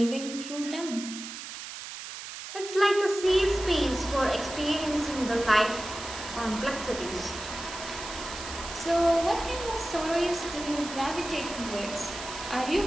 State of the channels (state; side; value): noise; right; hiss, 10 dB below the sound